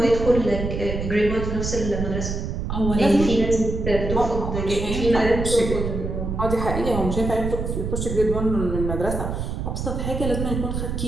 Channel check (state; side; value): noise; right; rumble, 3 dB below the sound